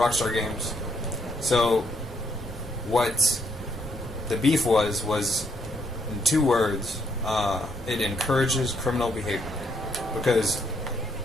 Games. So, what the beef was in 2 words, it encourages criminal behavior, because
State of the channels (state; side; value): normal; both; correlation 0.73